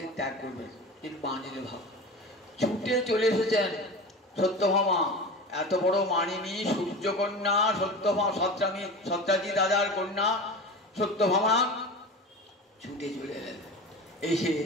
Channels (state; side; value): normal; both; correlation 0.31